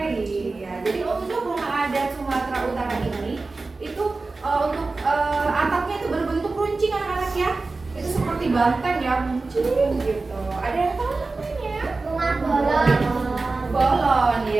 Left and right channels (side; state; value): left; quieter; 3.6 dB